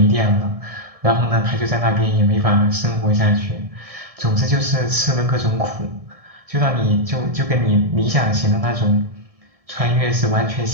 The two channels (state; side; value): late; left; 1.7 ms